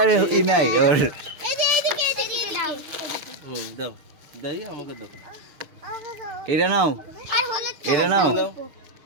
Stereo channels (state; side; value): late; left; 6.8 ms